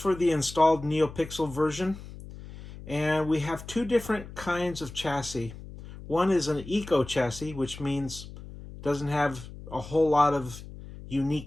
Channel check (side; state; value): left; noise; hum, 14 dB below the sound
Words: the installed NeoPixel version, and we have two different kinds of chassis. One is an eco chassis, which means it doesn't have a whole lot of